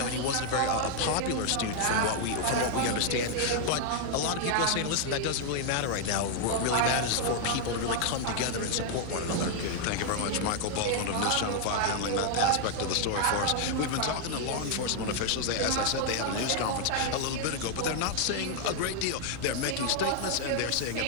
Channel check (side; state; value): both; different; correlation 0.00